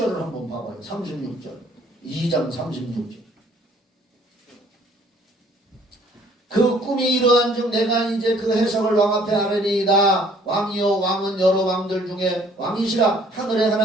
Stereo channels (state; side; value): normal; both; correlation 0.58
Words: 한번 봐봐요. 36절. 2장 36절. 그 꿈이 이러한즉 내가 이제 그 해석을 왕 앞에 아뢰리이다. 왕이요 왕은 여러 왕들 중에 왕이시라. 하늘의